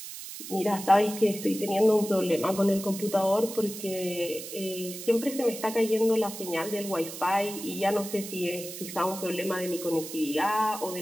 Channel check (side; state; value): right; noise; hiss, 10 dB below the sound